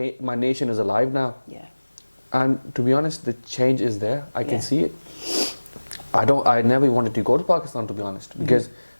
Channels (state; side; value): inverted; both; correlation -1.00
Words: nation is alive now. Yeah. And to be honest, the change is there. I can see it. I never wanted to go to Pakistan, to be honest, because